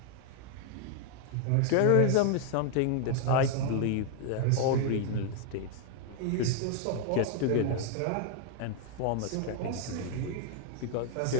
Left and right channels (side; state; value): both; different; correlation 0.00